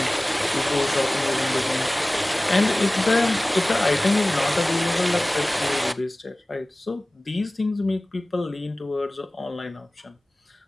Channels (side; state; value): both; normal; correlation 0.98